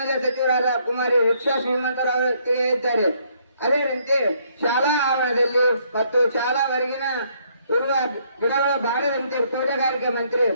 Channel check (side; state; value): both; inverted; correlation -0.68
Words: ಸಚಿವರಾದ ಕುಮಾರಿ ರಿಕ್ಷಾ ಶ್ರೀಮಂತರಾವ್ ತಿಳಿಸಿದ್ದಾರೆ. ಅದೇನಂತೆ ಶಾಲಾ ಆವರಣದಲ್ಲಿ ಮತ್ತು ಶಾಲಾ ಹೊರಗಿನ ಇರುವ ಗಿಡಗಳು ಬಾಡದಂತೆ ತೋಟಗಾರಿಕೆ ಮಂತ್ರಿ